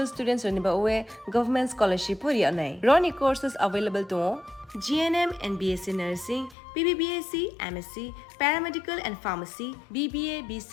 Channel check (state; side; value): drops out; right; at 6.6 s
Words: students ni ba oe government scholarship puri anai. Roni courses available to GNM and BSc Nursing, BBBSc, MSc, Paramedical and Pharmacy, BBA,